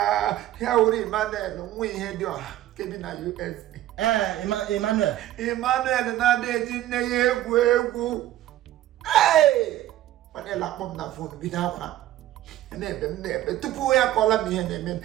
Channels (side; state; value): left; quieter; 13.8 dB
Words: ya wuru Emmanuel nwa ihe dị ọha kebi na USA. Emmanuel na-adịghị nne ya egwu Emmanuel akpọ m na fonu bido akwa na-ebe tupu ya kọla m ihe na-eme